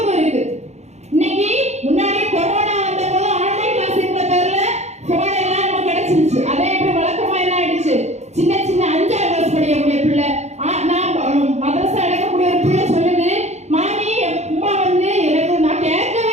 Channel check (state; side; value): late; left; 0.32 ms